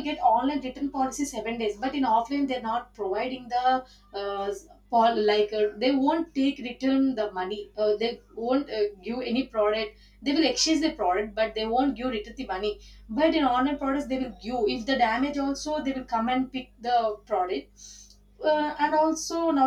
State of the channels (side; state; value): both; identical; correlation 1.00